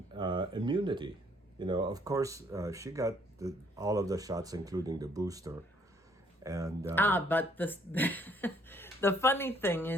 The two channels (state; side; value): normal; both; correlation 0.64